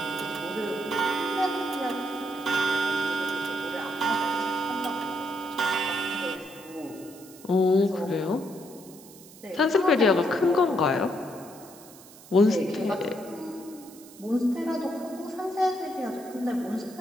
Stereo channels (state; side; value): noise; right; hiss, 20 dB below the sound